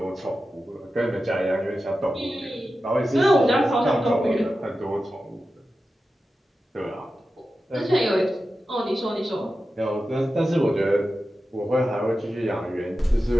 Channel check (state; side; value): normal; both; correlation 0.92